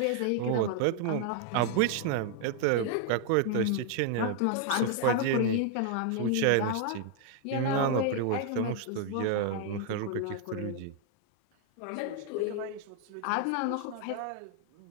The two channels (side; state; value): both; different; correlation 0.00